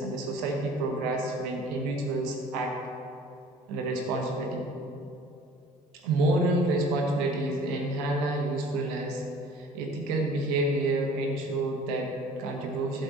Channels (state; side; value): normal; both; correlation 0.49